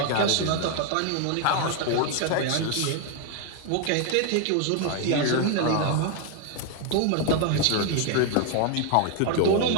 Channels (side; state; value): both; different; correlation 0.00